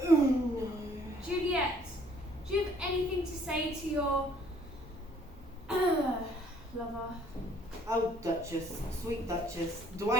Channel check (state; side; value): normal; both; correlation 0.60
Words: Juliet, do you have anything to say to your lover? Oh, Duchess, sweet Duchess, do I